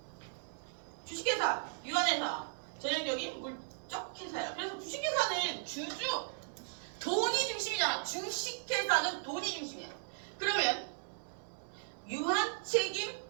주식회사, 유한회사, 전형적인 물적 회사야. 그래서 주식회사는 돈이 중심이잖아. 주식회사는 돈이 중심이야. 그러면 유한책임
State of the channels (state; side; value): silent; left; 53 dB below the other